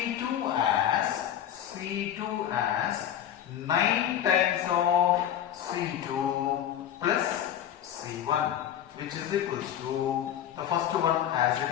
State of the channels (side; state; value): right; quieter; 10.4 dB